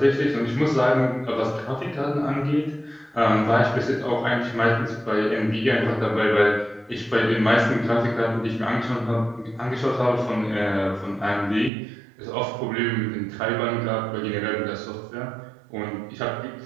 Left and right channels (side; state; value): left; drops out; at 11.7 s